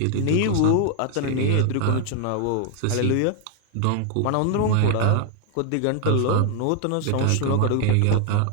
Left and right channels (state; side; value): different; both; correlation 0.00